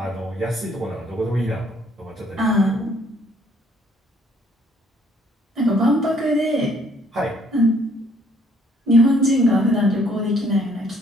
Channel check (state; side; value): normal; both; correlation 0.64